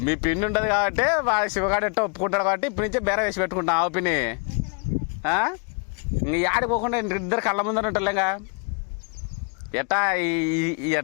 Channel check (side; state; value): right; quieter; 37.4 dB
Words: మీ పిన్ని ఉండదు కాబట్టి వాళ్ళ శివగాడు ఎట్టో ఒప్పుకుంటాడు కాబట్టి ఇప్పటి నుంచే బేర వేసి పెట్టుకుంటాం ఆ పిన్ని. ఇంక ఆడిపోకుండా ఇద్దరు కళ్ళ ముందర ఉంటారులేగా. ఎట్టా